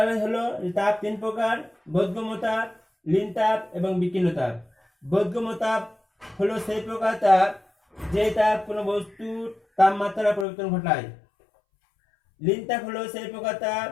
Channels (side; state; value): right; drops out; at 10.5 s